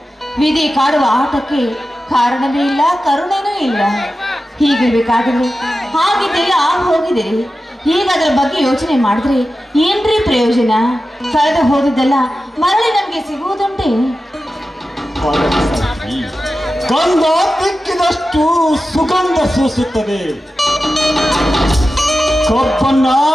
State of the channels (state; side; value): normal; both; correlation 0.93